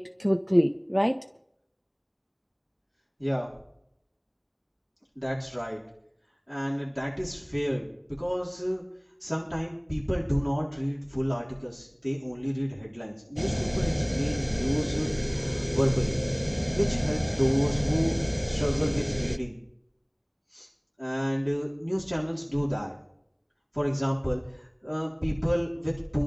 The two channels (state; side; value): identical; both; correlation 1.00